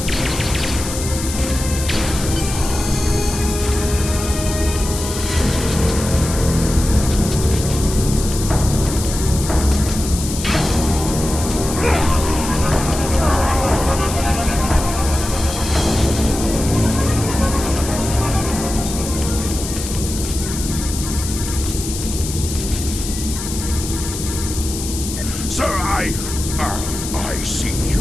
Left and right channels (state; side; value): noise; left; hiss, 8 dB below the sound